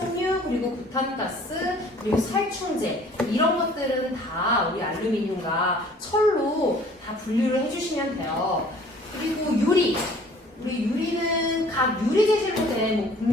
그리고 부탄가스, 그리고 살충제 이런 것들은 다 우리 알루미늄과 철로 다 분류를 해주시면 돼요. 그리고 유리, 우리 유리는 각 유리 재질로 된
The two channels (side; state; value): both; normal; correlation 0.53